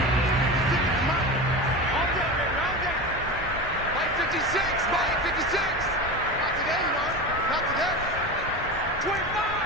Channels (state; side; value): normal; both; correlation 0.26